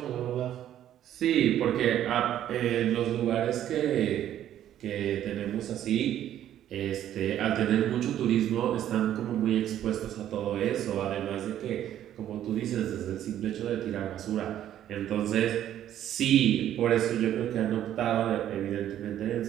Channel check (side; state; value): left; quieter; 11.4 dB